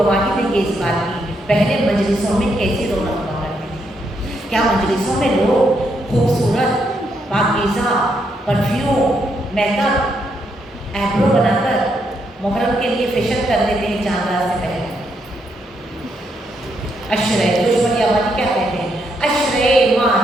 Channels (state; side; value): normal; both; correlation 0.77